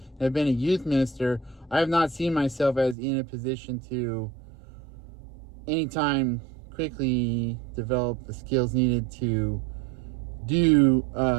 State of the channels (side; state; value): left; drops out; at 3.0 s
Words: I've been a youth minister, I have not seen myself as in a position to anytime quickly develop the skills needed to do